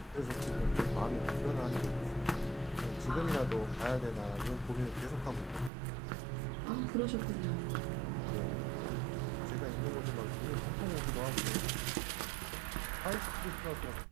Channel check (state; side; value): drops out; left; at 5.7 s